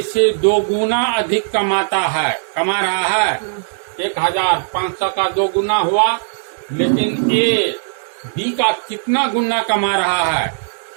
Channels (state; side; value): silent; left; digital silence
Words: से 2 गुना अधिक कमा रहा है। 1000, 500 का 2 गुना हुआ, लेकिन ए बी का कितना गुना कमा रहा है,